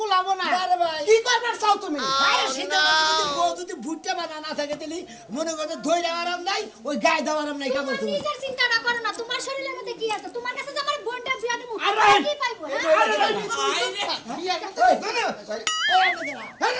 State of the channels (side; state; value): both; identical; correlation 1.00